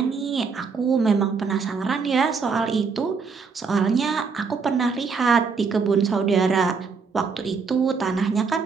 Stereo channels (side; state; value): left; quieter; 5.2 dB